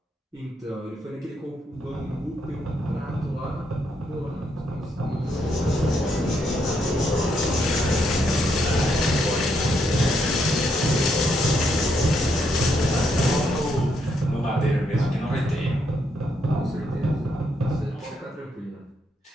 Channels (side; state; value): both; normal; correlation 0.77